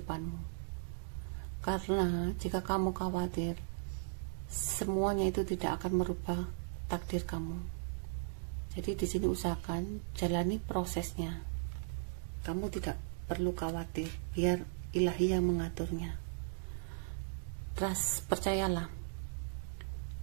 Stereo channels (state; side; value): silent; left; digital silence